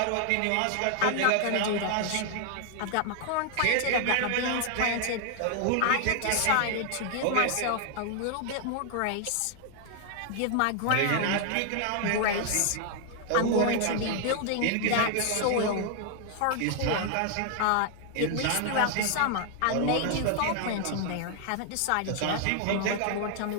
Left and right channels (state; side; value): different; both; correlation 0.00